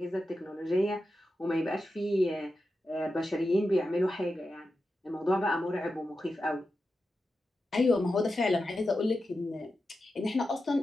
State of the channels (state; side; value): normal; both; correlation 0.91